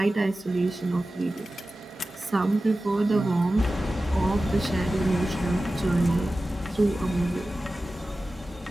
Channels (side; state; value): both; normal; correlation 0.95